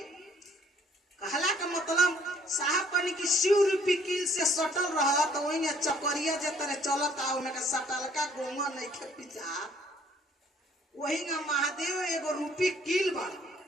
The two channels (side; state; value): both; normal; correlation 0.61